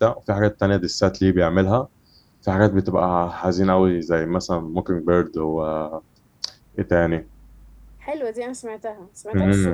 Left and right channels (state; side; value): identical; both; correlation 1.00